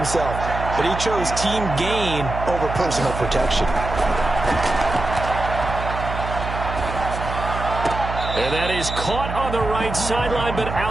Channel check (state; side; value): noise; right; hum, 6 dB below the sound